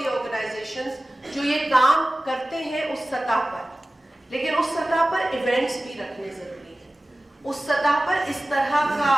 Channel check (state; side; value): normal; both; correlation 0.97